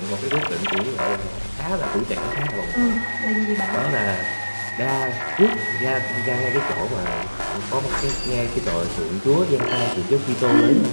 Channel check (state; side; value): inverted; both; correlation -1.00